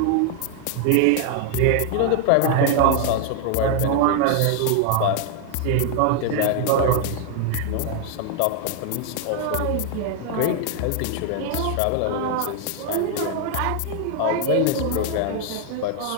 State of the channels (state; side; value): different; both; correlation 0.00